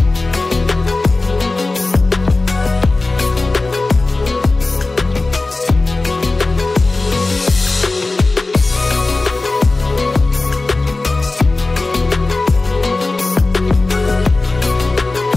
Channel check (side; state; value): right; quieter; 3.3 dB